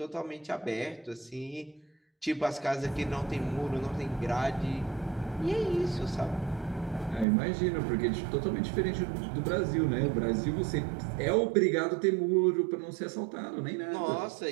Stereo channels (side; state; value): left; drops out; at 7.2 s